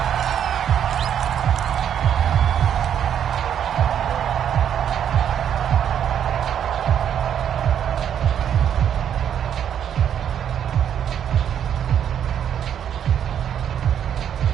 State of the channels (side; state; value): left; quieter; 9.2 dB